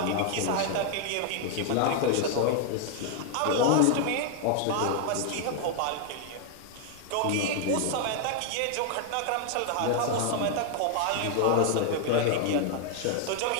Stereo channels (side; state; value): both; different; correlation 0.00